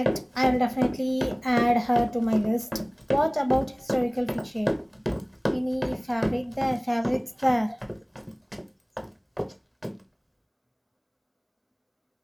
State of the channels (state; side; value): identical; both; correlation 1.00